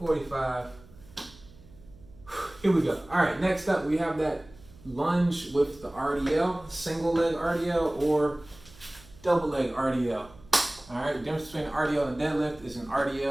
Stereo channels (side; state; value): right; noise; hum, 23 dB below the sound